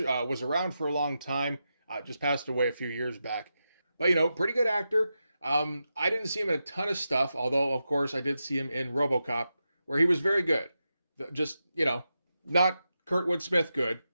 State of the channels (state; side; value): inverted; both; correlation -0.89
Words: was around for a long time, just passed away a few years back. But, you know, pretty good actor. I didn't see him in a ton of stuff, although, of course, I did see him in RoboCop, where he was very good. Just, you know, not Kurtwood Smith good